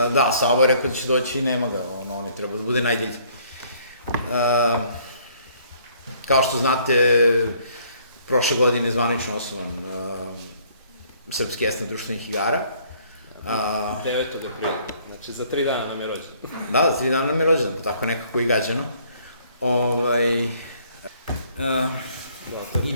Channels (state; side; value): inverted; both; correlation -0.61